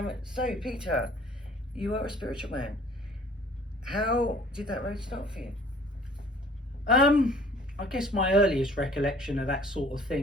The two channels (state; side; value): normal; both; correlation 0.53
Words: So Peter, you are a spiritual man. How did that road start for you? I guess my earliest recollection of that sort of